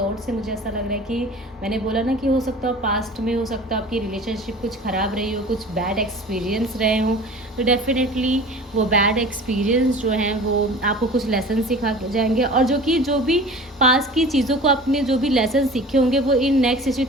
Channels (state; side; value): normal; both; correlation 0.40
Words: से मुझे ऐसा लग रहा है कि मैंने बोला ना कि हो सकता है पास्ट में, हो सकता है आपकी रिलेशनशिप कुछ ख़राब रही हो, कुछ बैड एक्सपीरियंस रहे हों, तो डेफिनेटली वो बैड एक्सपीरियंस जो हैं वो आपको कुछ लेसन सिखा के जाएंगे। और जो भी पास्ट की चीज़ों को आपने जो भी लेसन सीखे होंगे वो इन नेक्स्ट